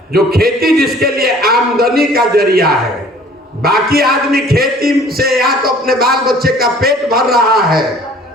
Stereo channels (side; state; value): both; normal; correlation 0.52